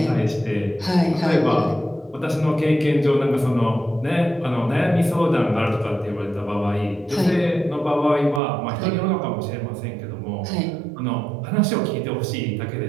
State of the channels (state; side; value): drops out; left; at 8.4 s